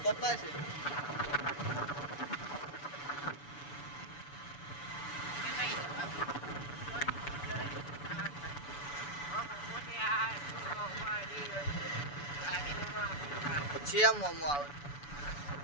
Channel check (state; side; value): late; right; 6.9 ms